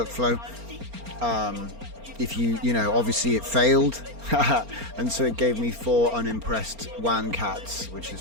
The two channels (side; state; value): left; late; 4.3 ms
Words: if you know, obviously it failed, and so it gave me 4 unimpressed WAN cats, which is